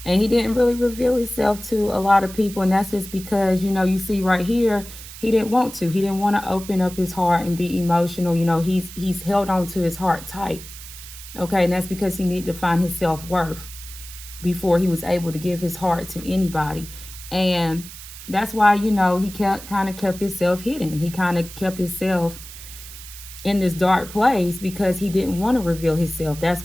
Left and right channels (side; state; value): right; noise; hiss, 14 dB below the sound